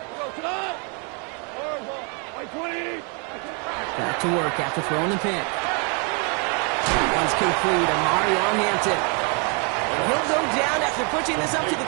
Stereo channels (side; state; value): left; quieter; 36.3 dB